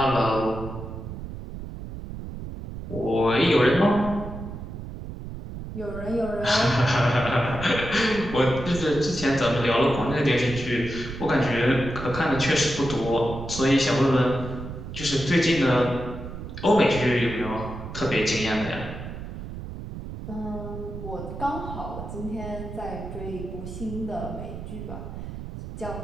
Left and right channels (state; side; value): noise; right; rumble, 9 dB below the sound